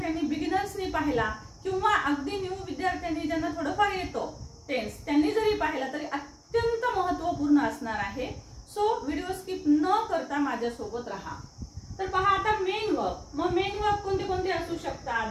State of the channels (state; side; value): identical; both; correlation 1.00